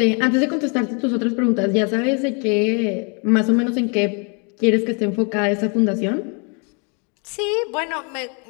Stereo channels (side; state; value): right; quieter; 35.9 dB